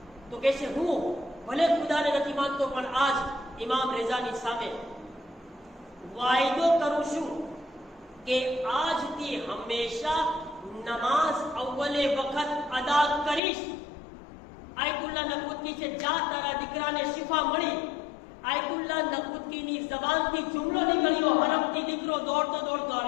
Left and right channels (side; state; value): right; drops out; at 13.4 s